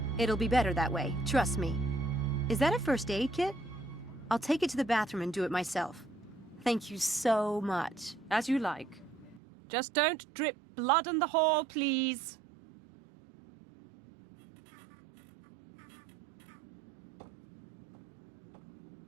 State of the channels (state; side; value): drops out; left; at 9.4 s